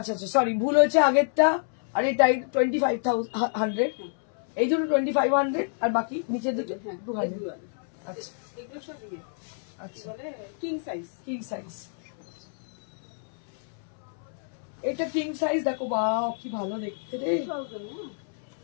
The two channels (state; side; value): silent; right; 59 dB below the other